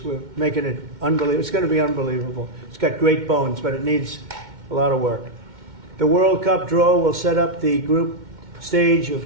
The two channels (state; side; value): late; left; 2.1 ms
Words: We're making it unbelievable. It's going to be unbelievable. It's got great bones, but it needs a lot of work. The World Cup draw will set up the group stage